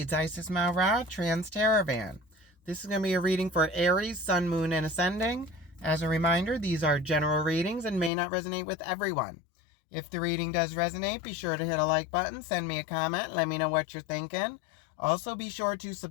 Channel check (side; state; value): right; drops out; at 8.1 s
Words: Isis Malra, Trans-Teravan. This is going to be a reading for Aries, Sun, Moon, and Ascending. As a reminder, these are general readings and may not resonate with everyone. If the reading does resonate, be sure to hit a like button, send me a comment, let me know what you're thinking. Also, be sure to